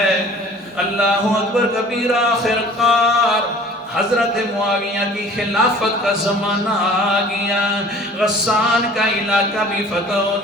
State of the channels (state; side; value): normal; both; correlation 0.47